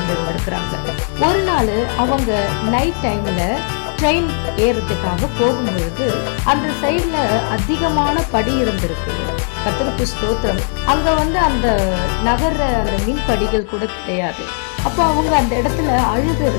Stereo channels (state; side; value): silent; right; 65 dB below the other